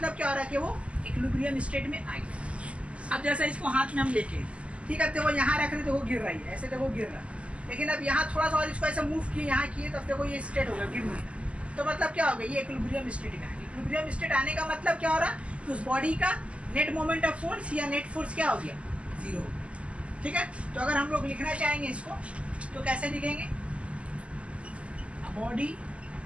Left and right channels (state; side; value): late; left; 0.059 ms